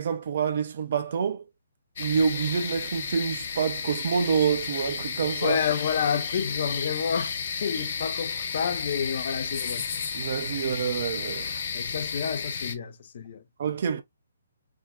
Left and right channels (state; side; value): inverted; both; correlation -0.68